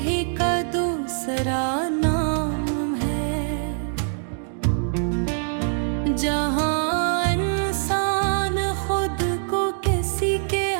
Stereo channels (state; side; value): silent; left; digital silence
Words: ही का दूसरा नाम है, जहाँ इंसान खुद को किसी के